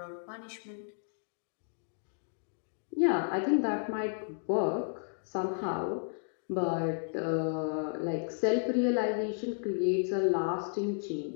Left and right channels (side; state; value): right; silent; digital silence